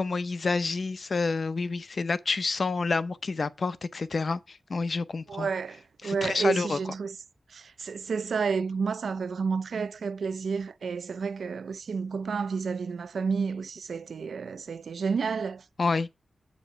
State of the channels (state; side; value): normal; both; correlation 0.88